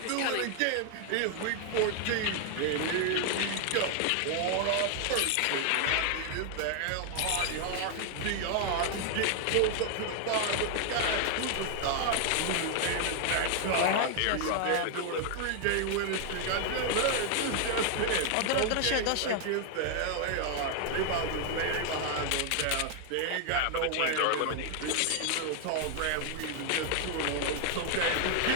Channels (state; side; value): different; both; correlation 0.00